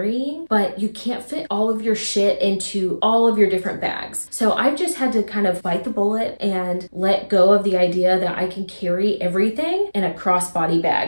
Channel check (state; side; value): inverted; both; correlation -1.00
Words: but you can't fit all of your shit into all of your different bags. So I've just had to kind of bite the bullet and let go of the idea that I can carry everything in a crossbody